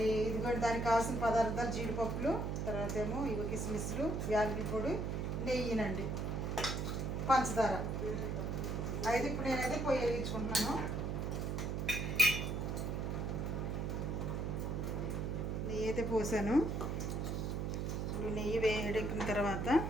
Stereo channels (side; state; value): right; noise; hum, 1 dB below the sound